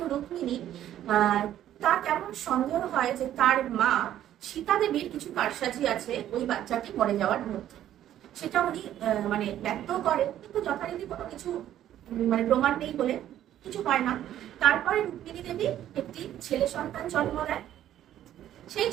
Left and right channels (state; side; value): quieter; left; 11.8 dB